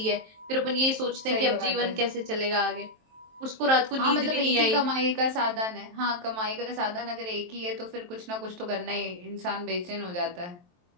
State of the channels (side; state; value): left; late; 23 ms